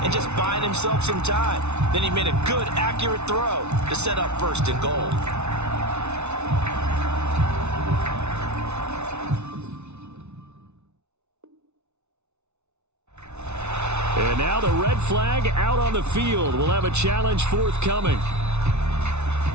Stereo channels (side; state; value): left; late; 0.81 ms